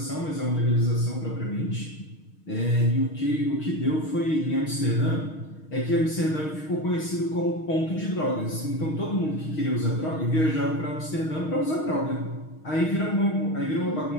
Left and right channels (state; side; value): late; right; 6.4 ms